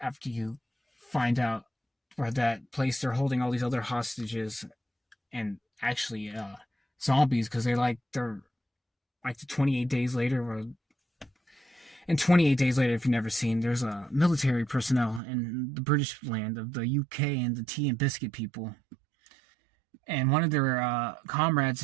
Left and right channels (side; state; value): left; drops out; at 15.2 s